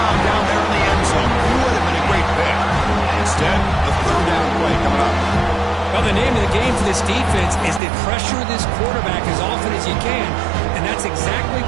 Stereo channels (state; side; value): drops out; left; at 7.8 s